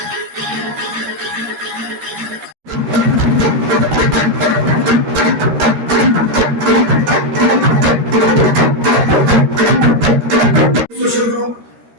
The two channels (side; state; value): left; late; 13 ms